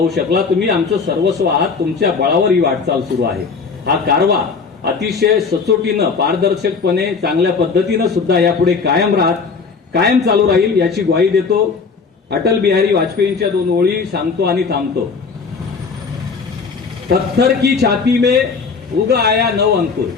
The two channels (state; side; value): quieter; right; 5.1 dB